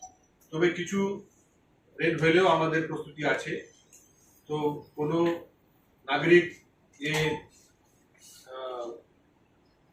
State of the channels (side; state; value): both; identical; correlation 1.00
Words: তবে কিছু রেন হলেও আমাদের প্রস্তুতি আছে। তো কোনো নাগরিক এ